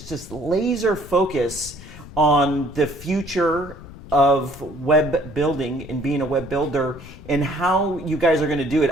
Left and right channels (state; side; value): noise; left; rumble, 17 dB below the sound